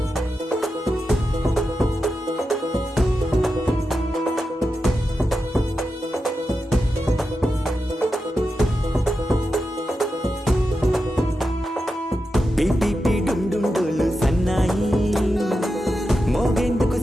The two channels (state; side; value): normal; both; correlation 0.89